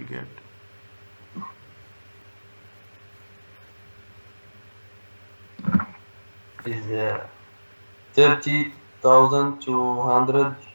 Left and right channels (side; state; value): both; inverted; correlation -1.00